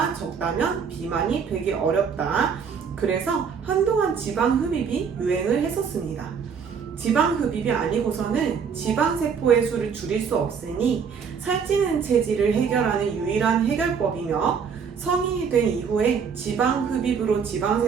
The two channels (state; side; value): quieter; left; 6.4 dB